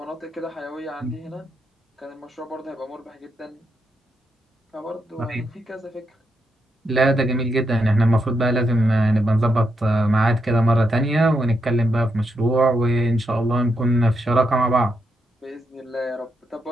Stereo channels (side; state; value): both; normal; correlation 0.81